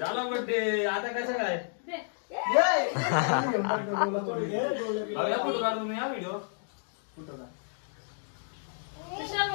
बर्थडे. आता कसं काय फोटो काढ तुम्ही हा व्हिडिओ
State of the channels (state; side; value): silent; right; digital silence